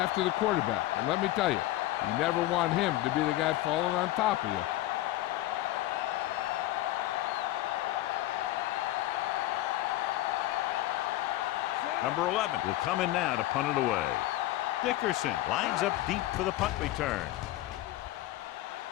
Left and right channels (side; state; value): right; quieter; 15.8 dB